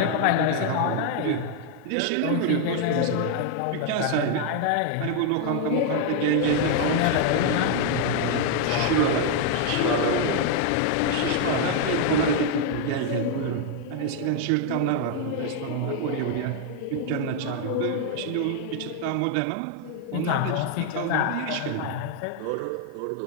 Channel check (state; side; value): different; both; correlation 0.00